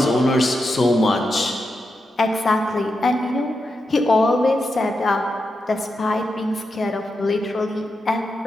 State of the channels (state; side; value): normal; both; correlation 0.87